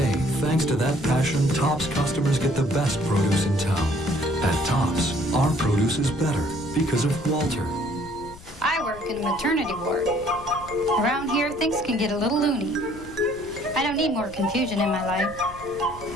thanks to that passion, Tops customers get the best produce in town. At Tops, our produce is better because of Walter. I work in a maternity ward. Around here, things can get a little loony. I don't need more confusion in my life.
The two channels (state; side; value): noise; left; rumble, 19 dB below the sound